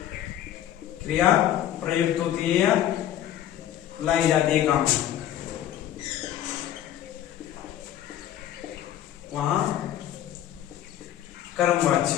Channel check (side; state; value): right; quieter; 11.7 dB